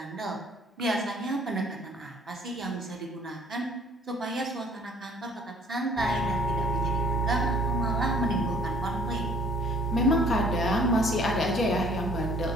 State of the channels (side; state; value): both; normal; correlation 0.57